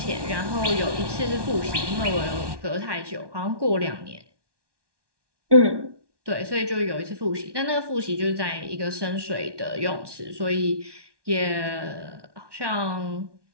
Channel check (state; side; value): late; left; 1.2 ms